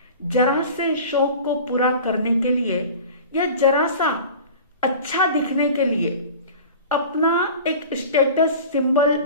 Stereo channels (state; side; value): inverted; both; correlation -0.38